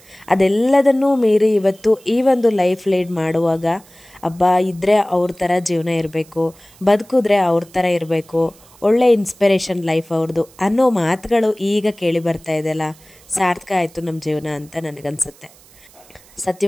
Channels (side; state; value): right; noise; hiss, 26 dB below the sound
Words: ಅದೆಲ್ಲದನ್ನೂ ಮೀರಿ ಇವತ್ತು ಈ ಒಂದು ಲೈಫ್ ಲೀಡ್ ಮಾಡುವಾಗ ಇದ್ದರೆ ಅವ್ರ ಥರ ಜೀವನ ಇರಬೇಕು, ಬದುಕಿದ್ರೆ ಅವ್ರ ಥರ ಇರಬೇಕು, ಒಳ್ಳೆ ಇನ್ಸ್ಪಿರೇಷನ್ ಲೈಫ್ ಅವ್ರದ್ದು ಅನ್ನೋ ಮಾತುಗಳು ಈಗ ಕೇಳಿ ಬರ್ತಾ ಇದೆಯಲ್ಲ, ಸಾರ್ಥಕ ಆಯಿತು ನಮ್ಮ ಜೀವನ ಅಂತ ನನಗನ್ಸುತ್ತೆ.